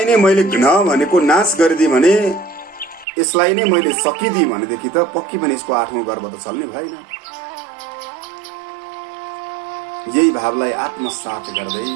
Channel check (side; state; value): left; drops out; at 3.1 s